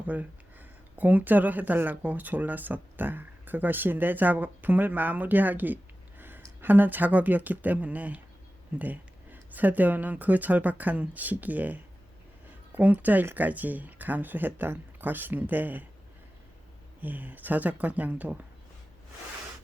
공짜로 해달라고 졸랐었다. 그것이 내 작품을 마무리하기 하는 작업이었기 때문에 세대원은 그 절박한 시기에 공짜 일까지 감수했던 것인데 저작권량도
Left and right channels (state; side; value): normal; both; correlation 0.95